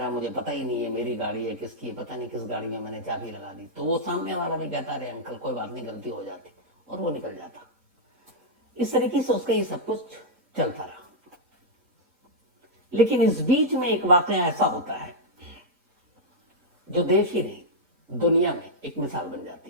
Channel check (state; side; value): late; left; 3.7 ms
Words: मुझे पता ही नहीं है मेरी गाड़ी है किसकी है, पता नहीं किस गाड़ी में मैंने चाबी लगा दी। तो वो सामने वाला भी कहता अरे अंकल कोई बात नहीं, गलती हो जाती, और वो निकल जाता। इस तरीके से उसका ये सब कुछ चलता रहा। लेकिन इस बीच में एक वाकया ऐसा होता है जो देश ही नहीं दुनिया में एक मिसाल बन